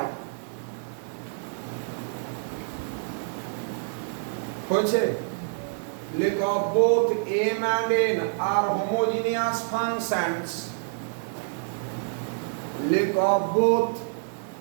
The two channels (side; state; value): left; silent; digital silence